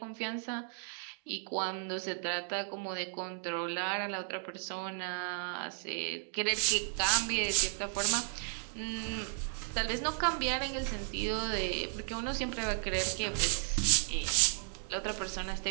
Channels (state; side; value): silent; left; 55 dB below the other